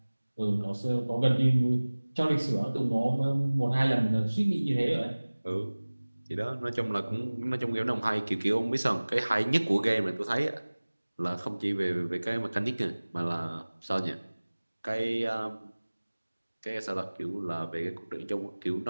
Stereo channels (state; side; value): inverted; both; correlation -1.00